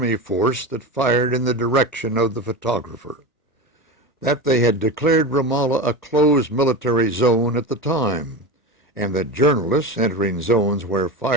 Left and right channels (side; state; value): both; normal; correlation 0.24